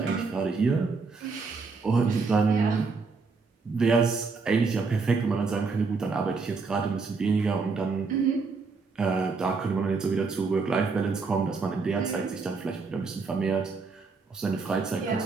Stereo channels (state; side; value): quieter; left; 4.5 dB